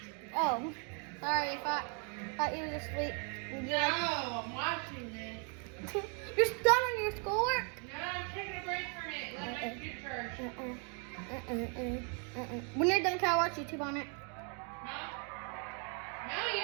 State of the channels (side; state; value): left; quieter; 38.9 dB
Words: Oh, sorry, thought you were asleep. Would you No, like- I'm watching this. You're done on your schoolwork? No, I'm taking a break from it. Let my computer charge. When you're done, can I watch YouTube on it? Huh? No, you